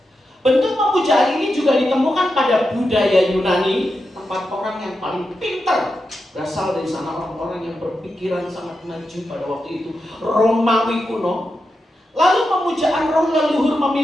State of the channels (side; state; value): both; normal; correlation 0.88